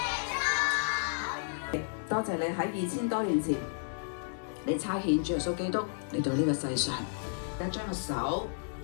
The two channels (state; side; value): silent; right; digital silence